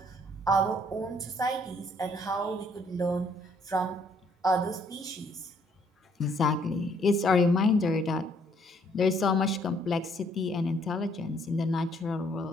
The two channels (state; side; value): normal; both; correlation 0.65